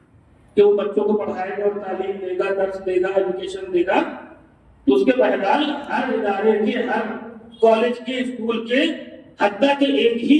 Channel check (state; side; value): identical; both; correlation 1.00